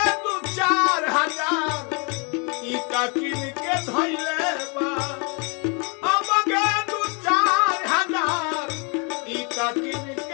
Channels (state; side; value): quieter; right; 34.0 dB